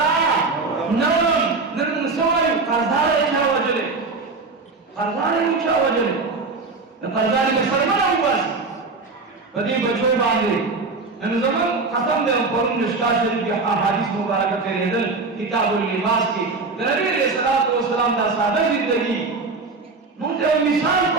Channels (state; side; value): quieter; left; 3.9 dB